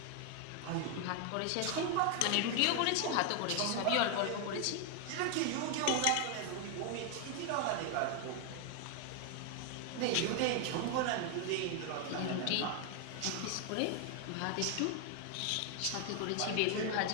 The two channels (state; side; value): different; both; correlation 0.01